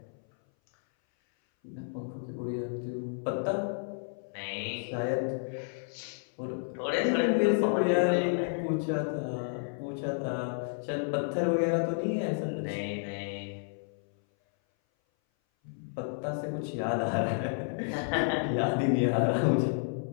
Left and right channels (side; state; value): right; silent; 57 dB below the other